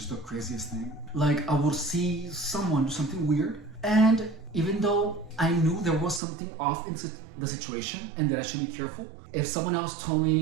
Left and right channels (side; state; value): left; drops out; at 6.2 s